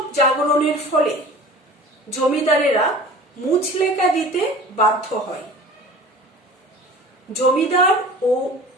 জাগরণের ফলে জমিদারেরা মুচলেকা দিতে বাধ্য হয়। জমিদার ও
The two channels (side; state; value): both; normal; correlation 0.41